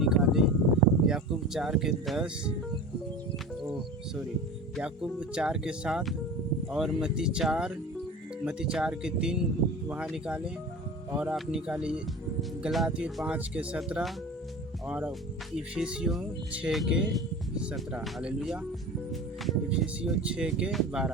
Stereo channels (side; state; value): both; normal; correlation 0.35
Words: याकूब 4:10 याकूब 4:7 और मत्ती 4:3 वहाँ निकालें। और आप निकालिए गलातियों 5:17 और इफिसियों 6:17, हालेलुया। इफिसियों